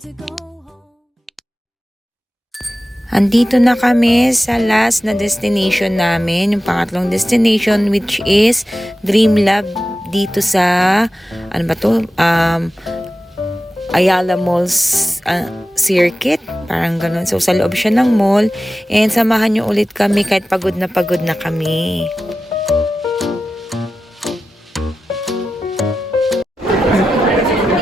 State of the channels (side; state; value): both; normal; correlation 0.93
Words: Andito na kami sa last na destination namin, yung pangatlong destination, which is Dream Lab dito sa ano ba to? Ayala Malls Circuit, parang ganun. So sa loob siya ng mall, and samahan niyo ulit kami kahit pagod na kami.